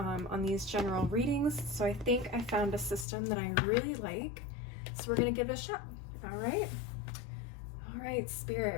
on these general readings. So I think I found a system that I really like, so we're going to give it a shot. All right. All right,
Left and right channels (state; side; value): drops out; right; at 3.1 s